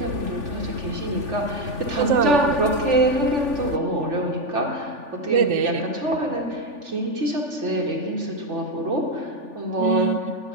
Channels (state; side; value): late; left; 3.4 ms